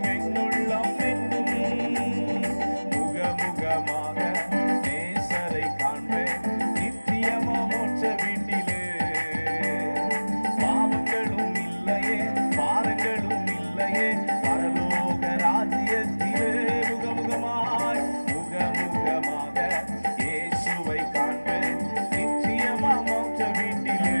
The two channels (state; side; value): inverted; both; correlation -1.00